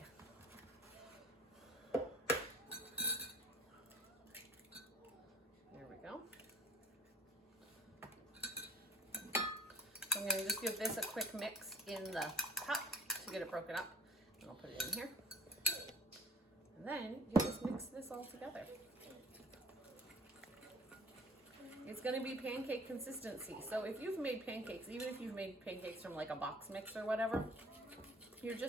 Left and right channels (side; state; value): both; normal; correlation 0.49